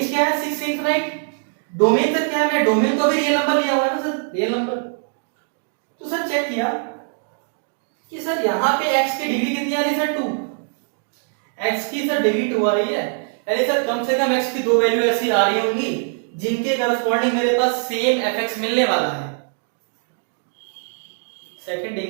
क्या है 6 से इनफाइनाइट, डोमेन सर क्या है, मैं डोमेन को भी रियल नंबर लिया हुआ है ना सर, रियल नंबर। तो सर चेक किया कि सर यहाँ पे x की डिग्री कितनी आ रही है सर 2, x की सर डिग्री 2 आ रही है, यानी सर कम से कम x की दो वैल्यू ऐसी आ रही होंगी जिनके करस्पॉन्डिंग मेरे पास सेम fx मिलने वाला है। सेकंड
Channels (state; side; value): silent; left; 58 dB below the other